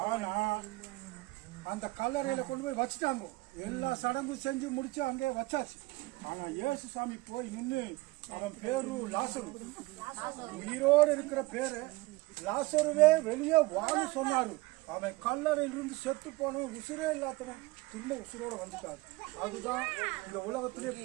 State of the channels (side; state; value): left; quieter; 21.6 dB